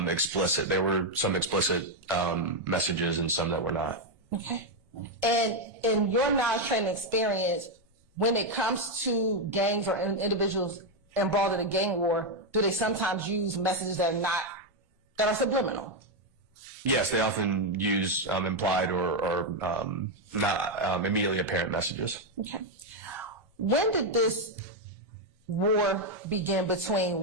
There were some explicit messages and some that were not. Okay. And in your knowledge, training, experience, when it comes to gangs or individuals involved in a gang war, do they sometimes use messages that are subliminal? Yes, they often use implied or not immediately apparent messages. Okay. When did this war begin between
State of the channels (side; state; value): both; normal; correlation 0.02